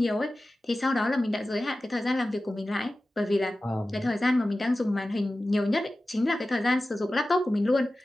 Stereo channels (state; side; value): normal; both; correlation 0.95